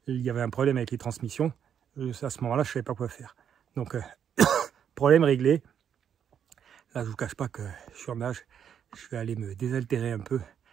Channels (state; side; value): quieter; left; 8.5 dB